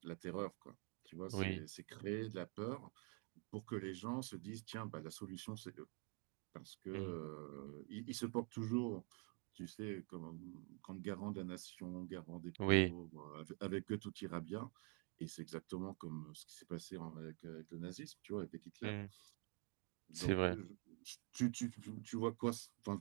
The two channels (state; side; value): quieter; left; 30.7 dB